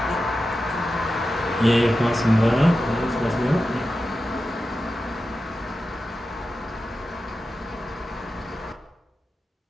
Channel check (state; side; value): normal; both; correlation 0.92